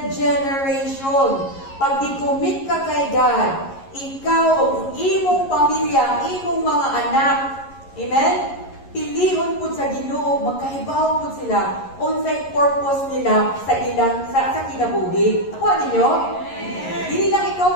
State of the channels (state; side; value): late; right; 11 ms